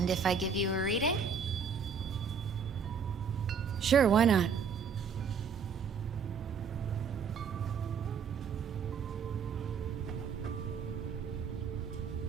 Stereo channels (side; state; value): left; quieter; 6.1 dB